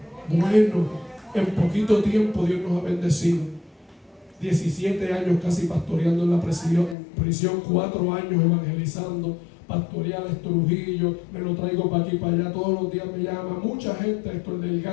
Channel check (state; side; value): drops out; right; at 7.0 s